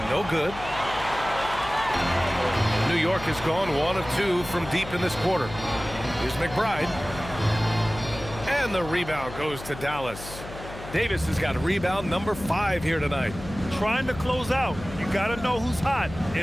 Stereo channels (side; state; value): left; noise; hum, 13 dB below the sound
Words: no good. New York has gone 1 of 2 from deep in this quarter. Here's McBride. And the rebound goes to Dallas. Davis has got rebound number 5 here tonight. Trying to close out. You got to know who's hot